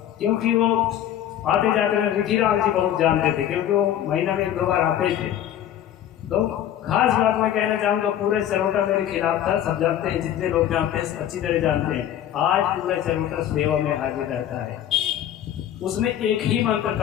क्योंकि वो आते जाते हैं। रिखीराम जी बहुत जानते थे, क्योंकि वो महीना में 2 बार आते थे। तो खास बात मैं कहना चाहूँगा, पूरे चरोटा मेरे खिलाफ था, सब जानते हैं, जितने लोग जानते हैं अच्छी तरह जानते हैं। आज पूरा चरोटा सेवा में हाजिर रहता है। उसने एक ही मंत्र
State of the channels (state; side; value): quieter; right; 11.0 dB